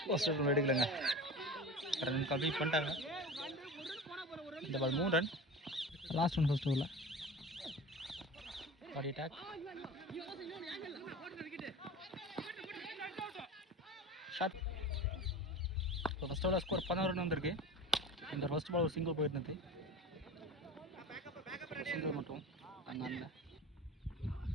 போஸ்டர் எடுக்கலைங்க. ரன் கம்ப்ளீட் பண்ணிட்டாங்க. இந்த பால் 3 ரன். லாஸ்ட் ஒன் ஃபர்ஸ்ட் ஓவரில் பாடி அட்டாக் ஷாட். இப்போ ஃபர்ஸ்ட் ஓவரில் ஸ்கோர் 11 ரன் வந்திருக்கு. இந்த ஃபர்ஸ்ட் பால் ஒரு சிங்கிள் போயிருந்தது. சிங்கிள் மட்டும் அங்கே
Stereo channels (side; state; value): both; normal; correlation 0.34